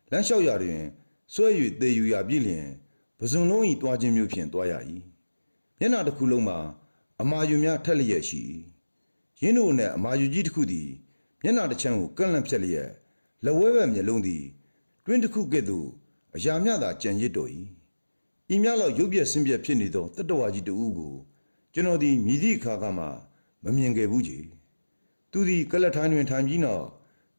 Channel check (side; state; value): both; inverted; correlation -1.00